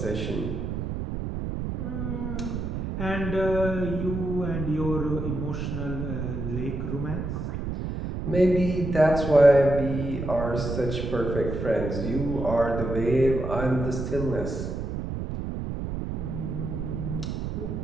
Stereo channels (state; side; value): noise; right; rumble, 4 dB below the sound